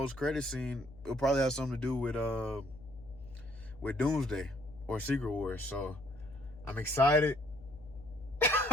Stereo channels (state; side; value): noise; left; hum, 19 dB below the sound